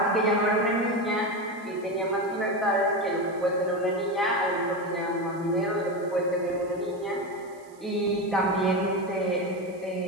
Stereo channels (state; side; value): noise; right; hiss, 28 dB below the sound